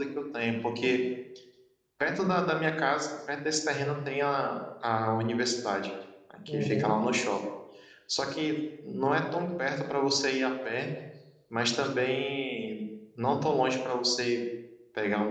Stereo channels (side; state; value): both; identical; correlation 1.00